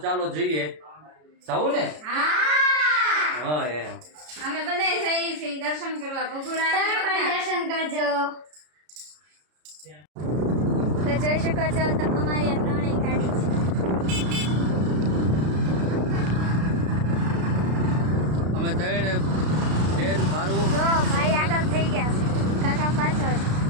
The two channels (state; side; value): late; left; 33 ms